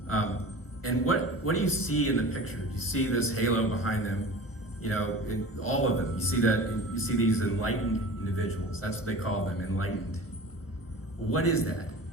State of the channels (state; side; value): late; right; 1.2 ms